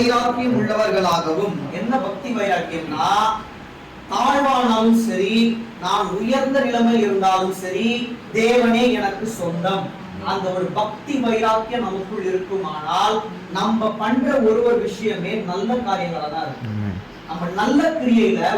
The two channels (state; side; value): identical; both; correlation 1.00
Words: உள்ளவர்களாகவும். என்ன பக்தி வைராக்கியம்னா, தாழ்வானாலும் சரி, நான் உயர்ந்த நிலைமையில் இருந்தாலும் சரி, தேவனே எனக்கு சொந்தம். அந்த ஒரு பக்தி வைராக்கியம் நமக்குள் இருக்குமானால் நம்ம பண்ற ஒரு விஷயமே நல்ல காரியங்களா தான் இருக்கும். நம்ம நல்ல கிரியையில